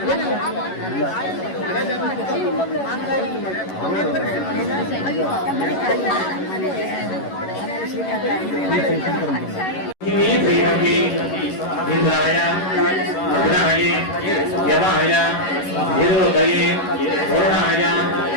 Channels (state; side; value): late; right; 11 ms